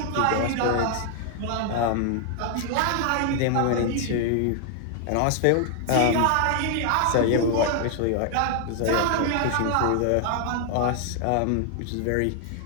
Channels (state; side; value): different; both; correlation 0.00